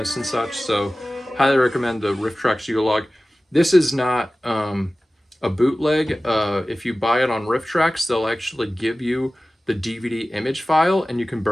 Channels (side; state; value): both; normal; correlation 0.97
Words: and such. So highly recommend the Riff Tracks Yule log. This is not a bootleg. If you buy it on Riff Tracks, they'll actually give you the DVD image file, and you can